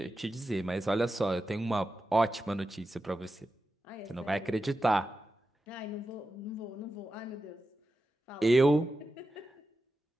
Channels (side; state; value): both; normal; correlation 0.91